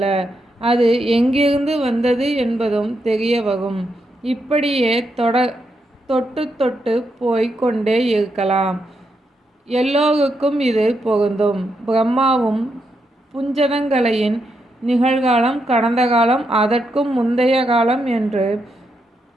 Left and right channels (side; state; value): both; normal; correlation 0.82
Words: அது எங்கிருந்து வந்தது என்பதும் தெரிய வரும். இப்படியே தொட்டு தொட்டு போய் கொண்டே இருக்கலாம். எல்லோருக்கும் இது பொருந்தும். பிரம்மாவும் புஞ்சதங்கலையின் நிகழ்காலம், கடந்த காலம், அதற்கும் முந்தைய காலம் என்று